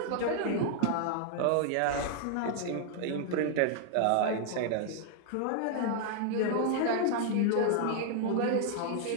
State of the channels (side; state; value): both; different; correlation 0.00